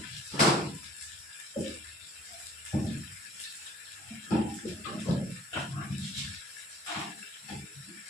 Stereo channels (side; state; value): both; normal; correlation 0.52